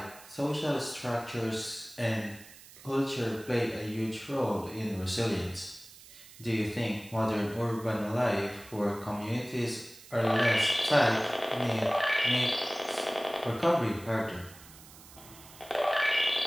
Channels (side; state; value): right; noise; hiss, 20 dB below the sound